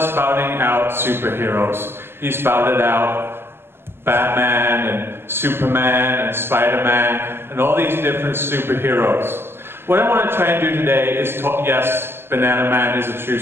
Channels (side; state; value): left; late; 0.11 ms